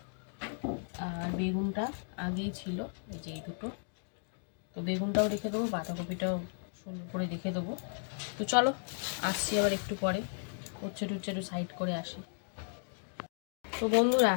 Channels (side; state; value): right; silent; digital silence